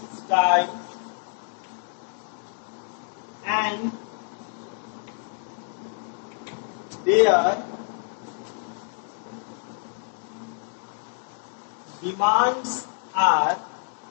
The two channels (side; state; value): right; silent; 59 dB below the other